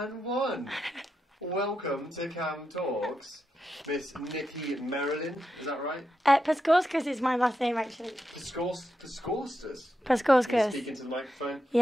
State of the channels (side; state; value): both; normal; correlation 0.86